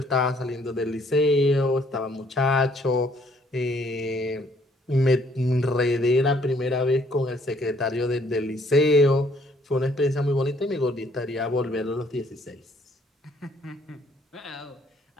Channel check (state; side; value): normal; both; correlation 0.64